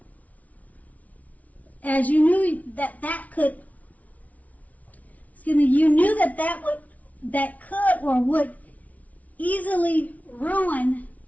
as you knew that could or would easily ruin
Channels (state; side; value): late; right; 0.070 ms